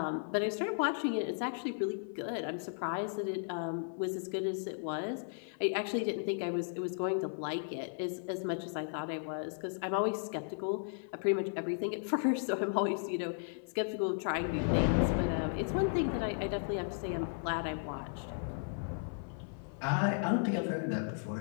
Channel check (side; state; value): right; silent; 54 dB below the other